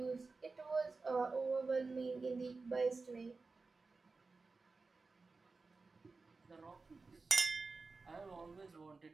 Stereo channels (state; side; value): quieter; left; 4.0 dB